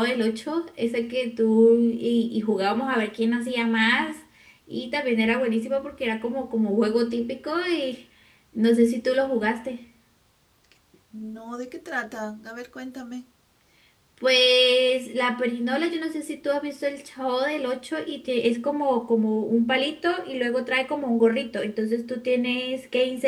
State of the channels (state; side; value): identical; both; correlation 1.00